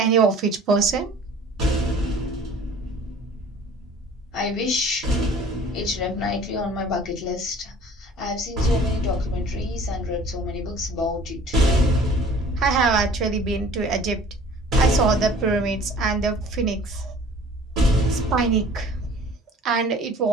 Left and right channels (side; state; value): both; normal; correlation 0.49